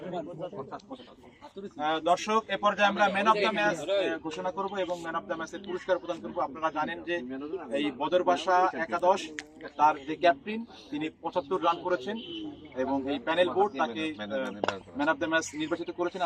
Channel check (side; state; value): both; identical; correlation 1.00